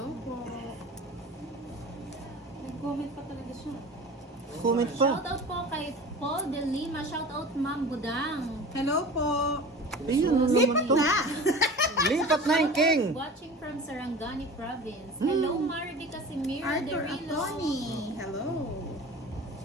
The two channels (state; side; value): normal; both; correlation 0.37